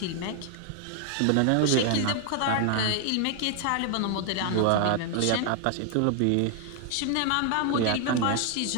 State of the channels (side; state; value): both; different; correlation 0.00